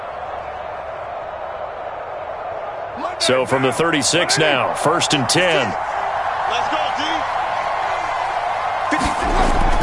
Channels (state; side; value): identical; both; correlation 1.00